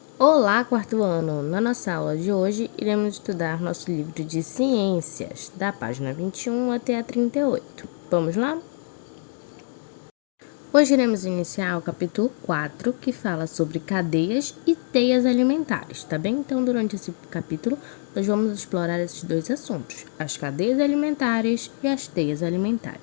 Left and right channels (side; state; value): right; silent; digital silence